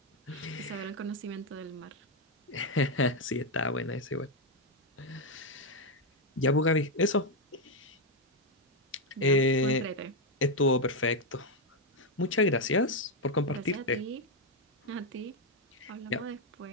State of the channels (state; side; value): normal; both; correlation 0.04